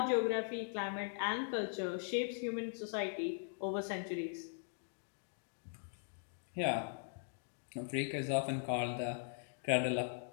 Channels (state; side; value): silent; right; digital silence